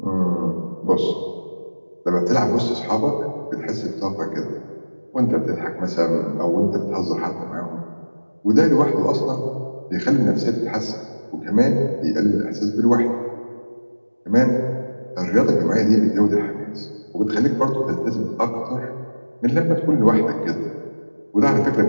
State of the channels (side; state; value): both; inverted; correlation -1.00